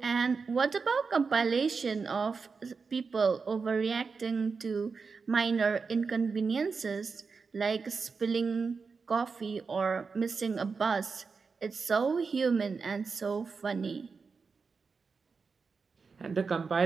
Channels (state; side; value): quieter; left; 5.0 dB